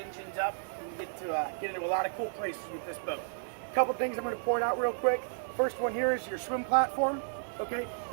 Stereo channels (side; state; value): left; silent; digital silence